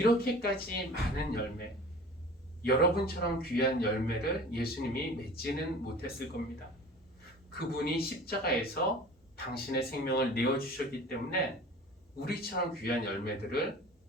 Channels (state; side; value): normal; both; correlation 0.42